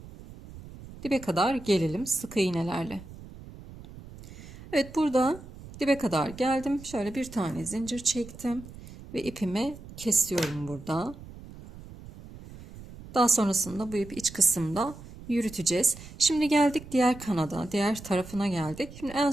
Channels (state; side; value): noise; right; rumble, 16 dB below the sound